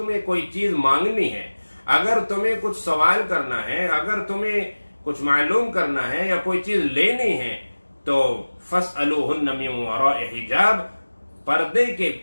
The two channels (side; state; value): both; inverted; correlation -1.00